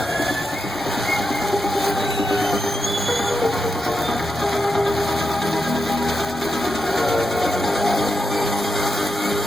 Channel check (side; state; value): both; normal; correlation 0.86